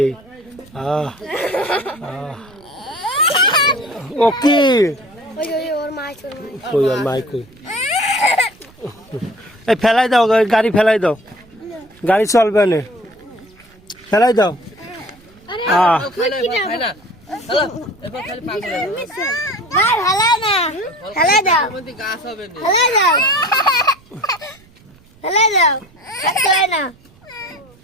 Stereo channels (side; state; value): right; noise; rumble, 27 dB below the sound